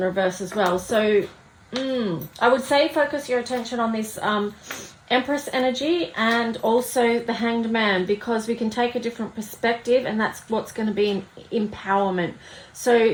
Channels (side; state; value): both; identical; correlation 1.00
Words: reverse as well. So I would say focus your attention on this Empress energy and also the Hanged Man, because we can take a different perspective, and that's what's going to be empowerment.